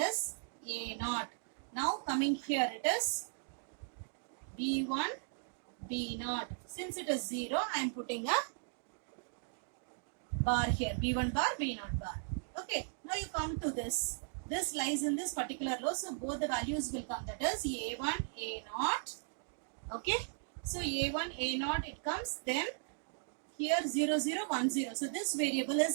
a0. Now coming here it is b1 b0. Since it is 0, I am putting a bar here, b1 bar b0 bar. Okay, now you come to this. This lies in this particular row, so both the values will come. That is a1 a0. Okay, so a1 a0 it comes, then here 0 0 1 0. So this variable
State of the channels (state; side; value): silent; left; digital silence